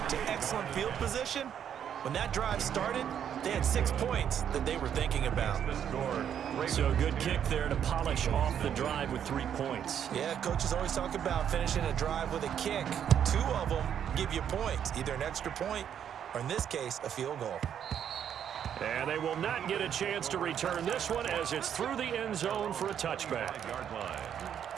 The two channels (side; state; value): left; quieter; 9.0 dB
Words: to excellent field position. When that drive started, they had 6 points that they were thinking about. So a good kick there to polish off the drive with 3 points. Yeah, coaches always talk about finishing a drive with a kick. 2 of them give you points, either an extra point or in this case, a field goal. And they will not get a chance to return this one as it's through the end zone for a touchback.